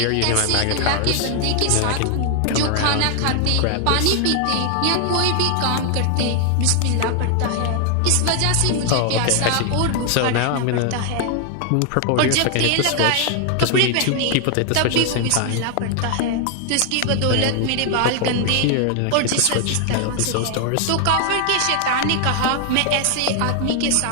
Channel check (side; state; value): both; different; correlation 0.00